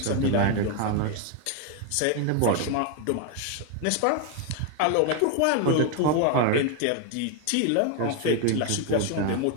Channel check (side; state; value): both; different; correlation 0.01